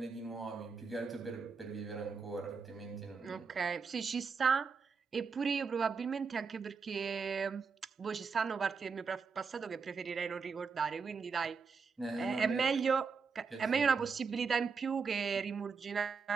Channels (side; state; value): left; quieter; 5.4 dB